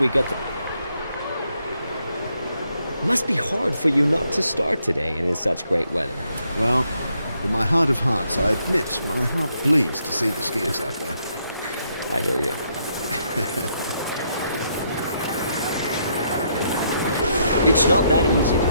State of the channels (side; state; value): both; inverted; correlation -0.75